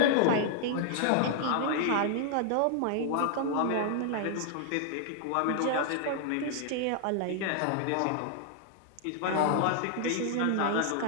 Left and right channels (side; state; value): both; different; correlation -0.01